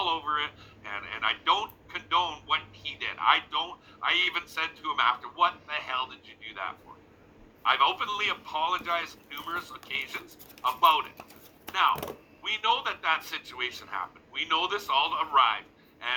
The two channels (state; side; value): identical; both; correlation 1.00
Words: over it, and I don't condone what he did. I even said to him after, what the hell did you do that for? I've openly apologized numerous occasions about it. Now, we know that situation happened. We know this all arrived,